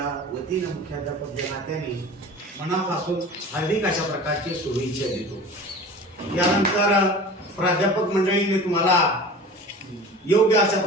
वतीनं मुख्याध्यापक या नात्याने मनापासून हार्दिक अशा प्रकारची शुभेच्छा देतो. यानंतर प्राध्यापक मंडळीने तुम्हाला योग्य अशा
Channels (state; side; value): normal; both; correlation 0.38